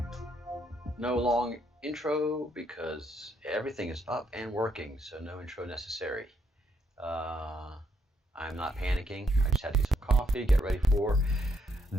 no long intro because everything is up and working, so no intro necessary. I'm not panicking. I just had to get some coffee, get ready for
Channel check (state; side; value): normal; both; correlation 0.74